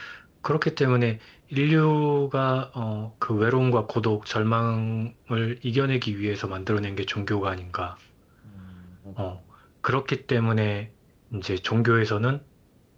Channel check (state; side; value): identical; both; correlation 1.00